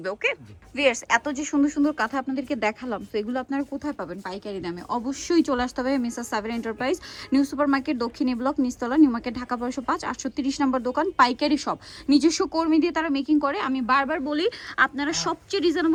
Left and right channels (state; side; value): identical; both; correlation 1.00